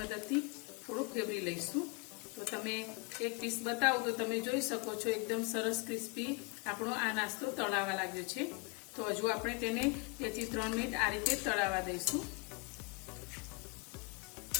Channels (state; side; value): quieter; right; 30.7 dB